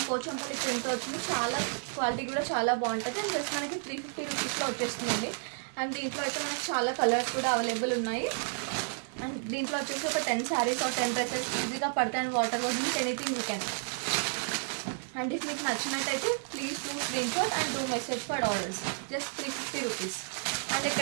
పోచంపల్లి ప్రింట్ వచ్చింది. చాలా క్వాలిటీ కూడా చాలా బాగుంటుంది. అండ్ జస్ట్ మనకి 350 రూపీస్లో వచ్చేస్తుందండి. అండ్ దీంట్లో అయితే మనకి చాలా కలర్స్ కూడా అవైలబుల్ ఉన్నాయి. అండ్ దీంట్లో వచ్చేసి ఒక 10 శారీస్ ఆర్ 10 డ్రెస్సెస్ ఈజీగా పడతాయి. And water wash anything you can. And if మీకు నచ్చినట్టయితే please do screen shot and do message for orders. Just 350 rupees. And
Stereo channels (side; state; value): left; silent; 57 dB below the other